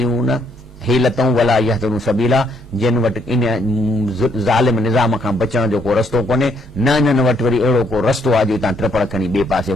हेलतऊं वला यहतदून सबीला, जिन वटि इन ज़ालिम निज़ाम खां बचण जो को रस्तो कोन्हे, न इन्हनि वटि वरी अहिड़ो को रस्तो आहे जो तव्हां ट्रपड़ खणी ॿिए पासे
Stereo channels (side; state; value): both; normal; correlation 0.71